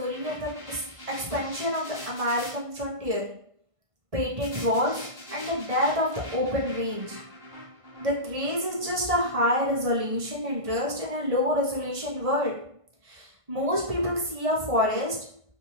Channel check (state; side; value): late; left; 1.5 ms